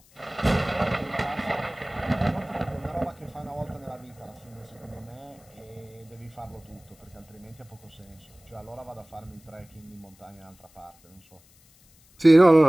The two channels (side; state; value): left; noise; hiss, 28 dB below the sound